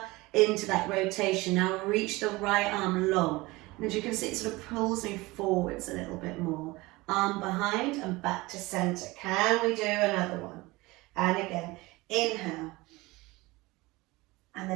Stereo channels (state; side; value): quieter; left; 21.7 dB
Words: into that rotation. Now reach the right arm long. And as you can see, it sort of pulls me forwards a little bit more. Arm behind and back to center. Can we do another one? And again, inhale. And